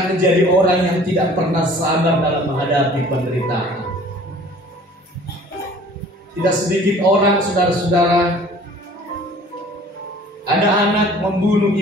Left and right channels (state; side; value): normal; both; correlation 0.50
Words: menjadi orang yang tidak pernah sabar dalam menghadapi penderitaan. Tidak sedikit orang, saudara-saudara, ada anak membunuh